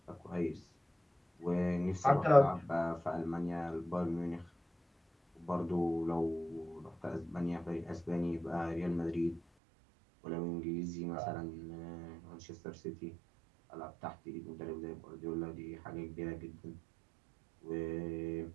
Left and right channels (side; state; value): left; drops out; at 9.4 s